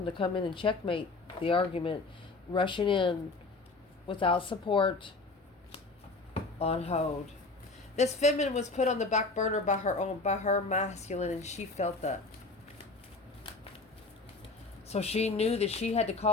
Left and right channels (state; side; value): quieter; right; 3.6 dB